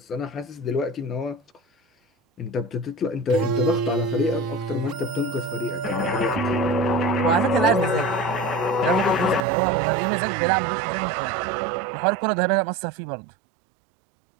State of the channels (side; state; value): left; drops out; at 9.5 s